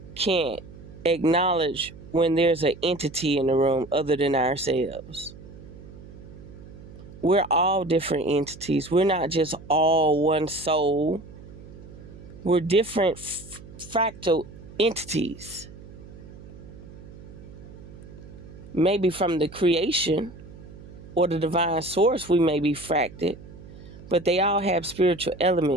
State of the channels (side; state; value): right; noise; hum, 17 dB below the sound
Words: can't acknowledge when there's an entity in the room other than ourselves. We're all different entities. We're not just all one soul. We're different fractal entities. Maybe from the creation or the divine source we may be fracted, but they all have spiritual